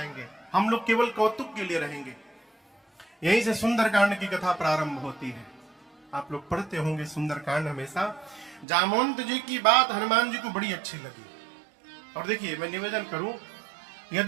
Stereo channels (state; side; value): drops out; left; at 8.7 s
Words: हम लोग केवल कौतुक के लिए रहेंगे। यहीं से सुंदरकांड की कथा प्रारंभ होती है। आप लोग पढ़ते होंगे सुंदरकांड हमेशा। जामवंत जी की बात हनुमान जी को बड़ी अच्छी लगी। और देखिए मैं निवेदन करूं,